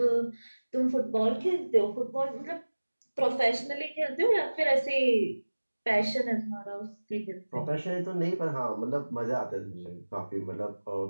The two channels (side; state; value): both; inverted; correlation -1.00